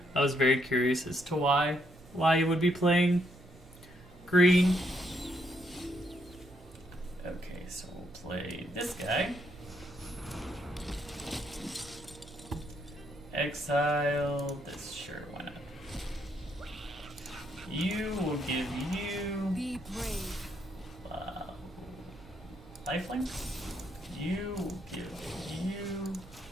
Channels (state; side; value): normal; both; correlation 0.75